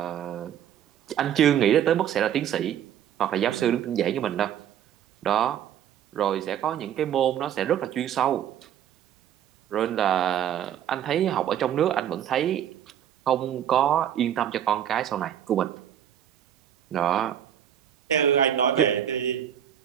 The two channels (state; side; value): quieter; left; 10.0 dB